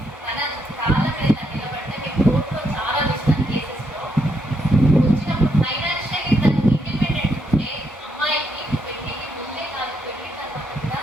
తన కాళ్ళ మీద నిలబడ్డ కోర్టులో చాలా విషయం కేసెస్లో వచ్చినప్పుడు ఫైనాన్షియల్లీ తను ఇండిపెండెంట్ ఉంటే అమ్మాయికి పెళ్లికి ముందే కాదు, పెళ్లి తర్వాత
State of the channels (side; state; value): both; normal; correlation 0.77